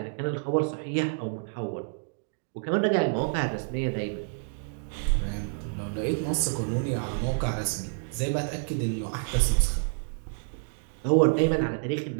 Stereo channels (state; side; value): silent; left; digital silence